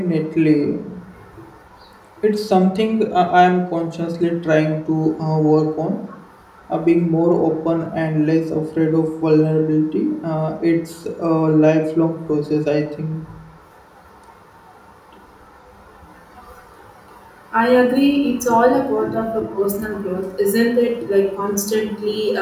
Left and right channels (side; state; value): both; identical; correlation 1.00